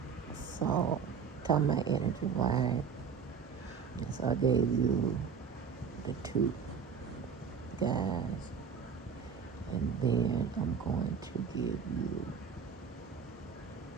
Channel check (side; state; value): left; quieter; 6.4 dB